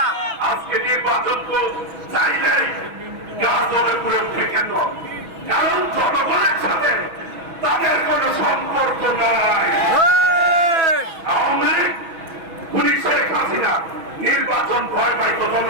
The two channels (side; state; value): left; late; 6.1 ms